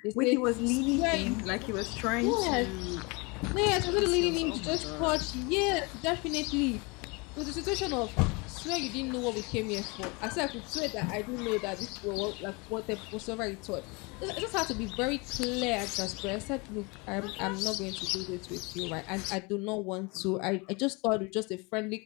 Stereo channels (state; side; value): quieter; right; 28.4 dB